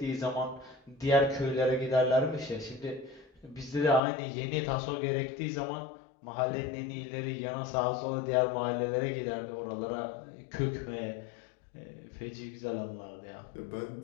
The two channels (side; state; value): right; drops out; at 4.0 s